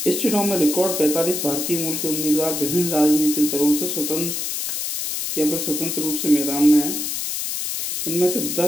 इस चुनाव में रिकॉर्ड 45 भारतीय मूल के उम्मीदवार विभिन्न राजनीतिक दलों से स्वतंत्र रूप से मैदान में हैं। इनमें से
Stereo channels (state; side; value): noise; left; hiss, 3 dB below the sound